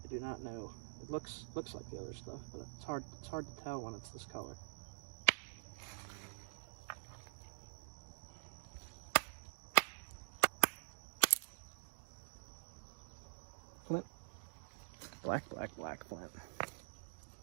I do not know. It looks like the other stuff, but it's hard to tell when it's this color. Flint. Black flint.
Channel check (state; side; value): silent; left; digital silence